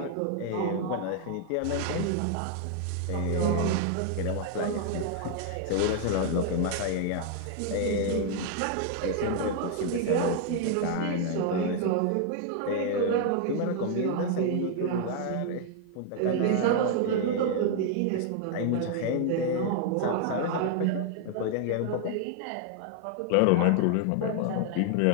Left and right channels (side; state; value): both; different; correlation 0.00